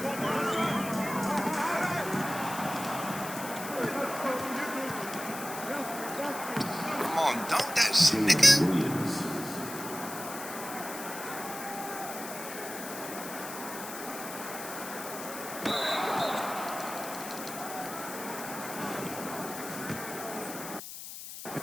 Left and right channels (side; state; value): left; noise; hiss, 10 dB below the sound